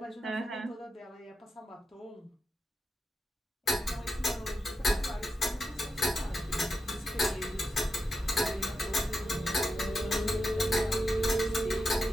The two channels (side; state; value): both; normal; correlation 0.87